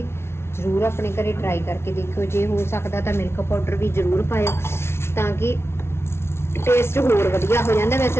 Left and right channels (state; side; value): late; right; 0.12 ms